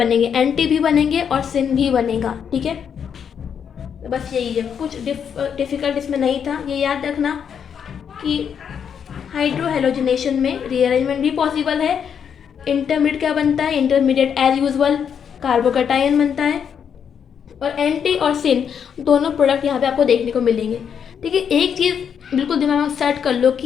एंटी भी बनेंगे और सिन भी बनेगा, ठीक है। तो बस यही है, कुछ डिफ़िकल्ट इसमें नहीं था। ये याद रखना कि हाइड्रोहेलोजिनेशन में रीअरेंजमेंट भी पॉसिबल है। इंटरमीडिएट क्या बनता है, इंटरमीडिएट एज यूजुअल कार्बोकेटाइन बनता है, और एंटी और सिन दोनों प्रोडक्ट यहाँ पे आपको देखने को मिलेंगे, ठीक है। एक चीज़ बिल्कुल दिमाग में सेट कर लो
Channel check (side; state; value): right; quieter; 7.7 dB